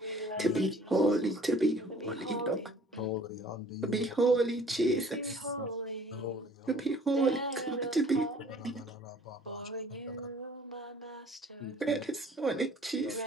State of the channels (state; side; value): normal; both; correlation 0.53